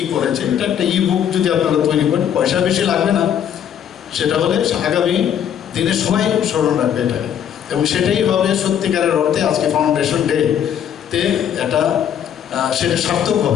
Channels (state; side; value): quieter; right; 9.2 dB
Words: করেছে। এটা একটা ই বুক যদি আপনারা তৈরি করেন, পয়সা বেশি লাগবে না, সেটা হলে আগামী দিনে সবাই স্মরণ রাখবে এটাকে, এবং সেটাই হবে সত্যিকারের অর্থে আজকে ফাউন্ডেশন ডে তে এটা সেটা সার্থক